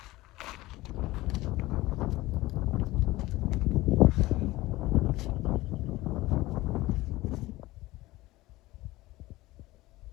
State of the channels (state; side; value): quieter; right; 18.7 dB